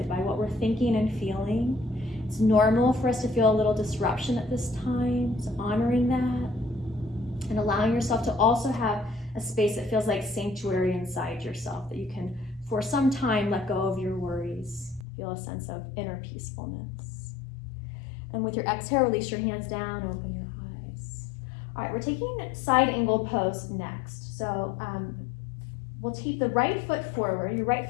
by what we're thinking and feeling. It's normal for us to feel a little disruption at this time, so honoring that and allowing yourself to also have a space that feels like sanctuary inside yourself, that you can, for some time, let go of your worries, feel a sense of inner peacefulness. And with your exhale, release your hands down, open your eyes. All right, we're taking side angle pose next. So we'll keep the right foot forward. Your right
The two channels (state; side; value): drops out; right; at 15.1 s